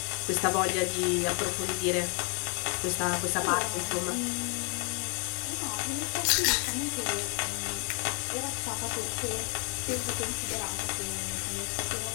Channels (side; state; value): right; quieter; 36.8 dB